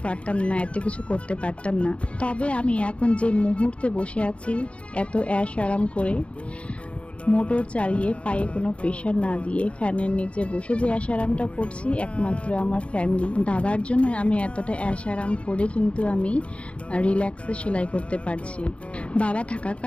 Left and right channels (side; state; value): right; late; 0.061 ms